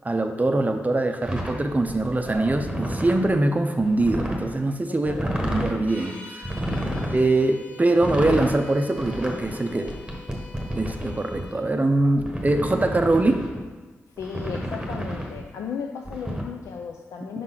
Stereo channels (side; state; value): both; normal; correlation 0.91